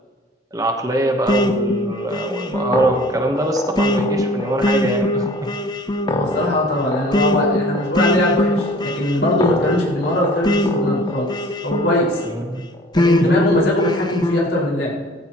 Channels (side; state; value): both; normal; correlation 0.48